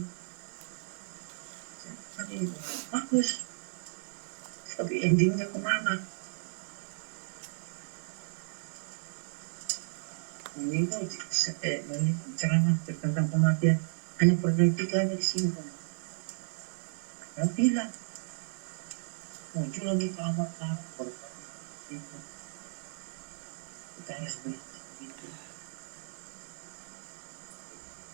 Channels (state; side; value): silent; left; digital silence